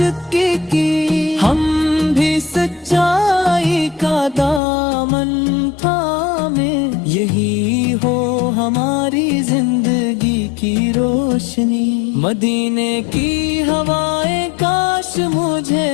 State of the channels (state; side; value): drops out; right; at 4.6 s